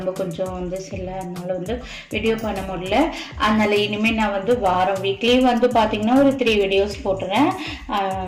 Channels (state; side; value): identical; both; correlation 1.00